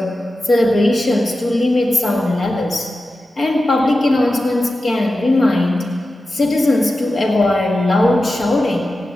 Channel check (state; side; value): normal; both; correlation 0.93